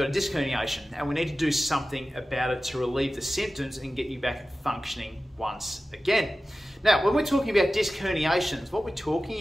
a disc herniation and we need to do something about it to relieve the symptoms and get you back functioning once again. Now, when we're talking about disc herniations, what we're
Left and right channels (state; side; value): normal; both; correlation 0.95